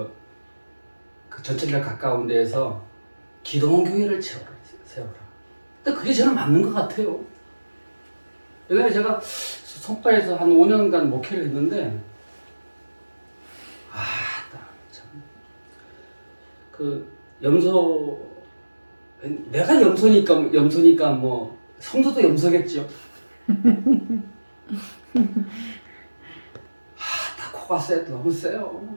전철역 가까운 데에서 기도원 교회를 세워라. 근데 그게 저는 맞는 것 같아요. 예전에 제가 송파에서 한 5년간 목회를 했는데 그 염소, 내가 염소니까 뭐 성도도 염소겠죠. 다 코가 너무 세요.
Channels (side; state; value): both; inverted; correlation -1.00